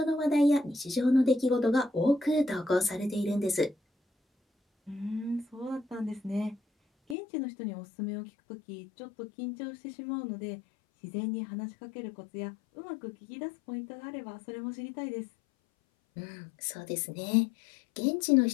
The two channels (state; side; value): drops out; right; at 7.2 s